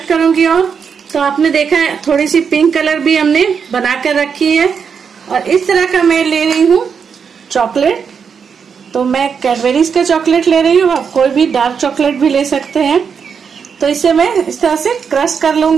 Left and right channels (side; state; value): left; quieter; 6.5 dB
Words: करूंगी। और तो आपने देखा है थोड़ी सी पिंक कलर भी हमने बनाकर रखी है। और इस तरह का मैं ले रही हूँ चॉकलेट, तो मैं कैडबरीज का चॉकलेट ले रही हूँ, आप कोई भी डार्क चॉकलेट भी ले सकते हैं। तो इसे मैं इस तरह से क्रश कर